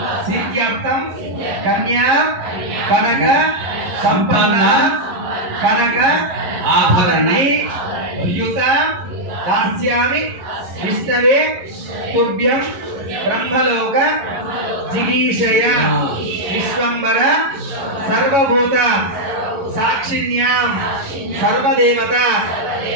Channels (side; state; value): left; late; 11 ms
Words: सिद्ध्यर्थं कन्या कनक संपन्न कनक आभरणे युत दास्यामि विष्णवे तुभ्यं ब्रह्मलोक जिगीषय विश्वंबर सर्वभूत साक्षिण्यां सर्वदेवता